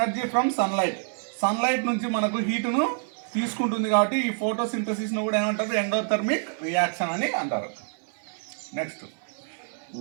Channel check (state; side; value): silent; left; 60 dB below the other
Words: from sunlight నుంచి మనకు హీటును తీసుకుంటుంది, కాబట్టి ఈ ఫోటోసింథసిస్ను కూడా ఏమంటారు? ఎండోథర్మిక్ రియాక్షన్ అని అంటారు. Next,